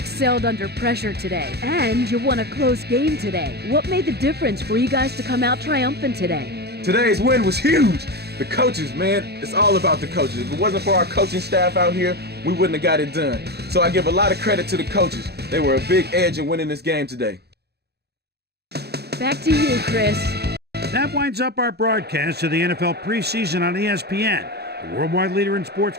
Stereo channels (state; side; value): late; left; 0.47 ms